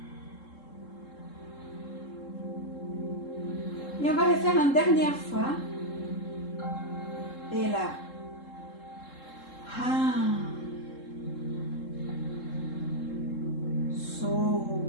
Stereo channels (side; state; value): right; late; 3.7 ms